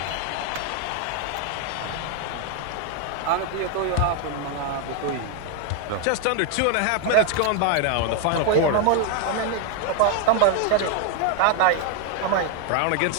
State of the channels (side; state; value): both; different; correlation 0.01